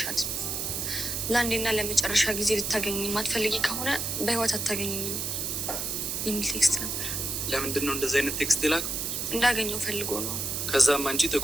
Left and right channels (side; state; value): right; noise; hiss, 2 dB below the sound